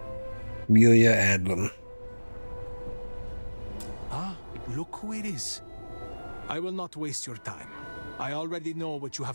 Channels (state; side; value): inverted; both; correlation -1.00